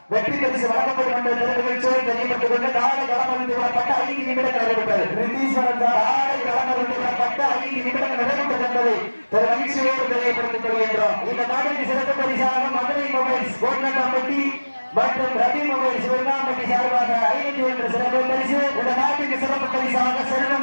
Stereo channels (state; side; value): inverted; both; correlation -1.00